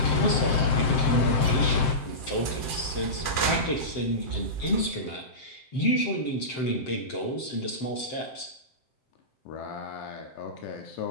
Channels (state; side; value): late; right; 7.7 ms